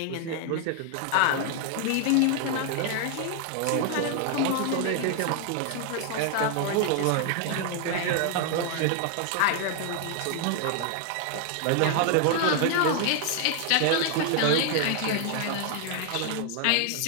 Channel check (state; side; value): different; both; correlation 0.00